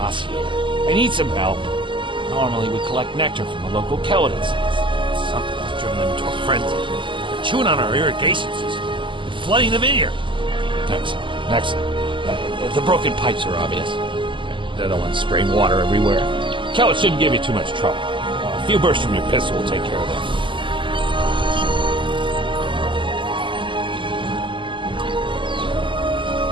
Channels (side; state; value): left; late; 0.24 ms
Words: here. I need some help. Normally we collect nectar from the local Kellid estates. Something has driven them into a frenzy. They're chewing on our irrigation system and flooding the vineyard. Excellent. The broken pipes are obvious. They're the ones spraying water everywhere. Kellid shouldn't give you too much trouble. A few bursts from your pistol will take care of them.